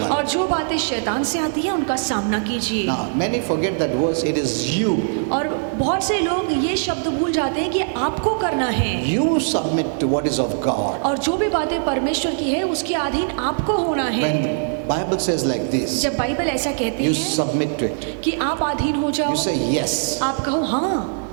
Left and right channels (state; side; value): silent; left; digital silence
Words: और जो बातें शैतान से आती हैं उनका सामना कीजिए। Now, many forget that verse. It is you. और बहुत से लोग ये शब्द भूल जाते हैं कि आपको करना है, You submit to what is of God. और जो भी बातें परमेश्वर की है उसके अधीन आपको होना है। When the Bible says like this, जब बाइबल ऐसा कहती you है submit to it. कि आप अधीन हो जाओ, You say yes. आप कहो हाँ